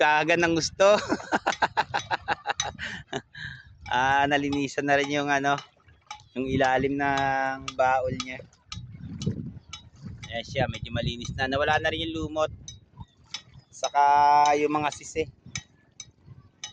ng gusto. Nalinisan na rin yung ano, yung ilalim ng baol niya. Ayan siya, medyo malinis na. Nawala na rin yung lumot. Saka yung mga sisi.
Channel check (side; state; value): both; identical; correlation 1.00